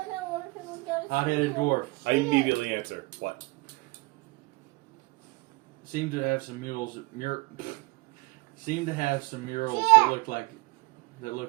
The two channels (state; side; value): quieter; left; 24.2 dB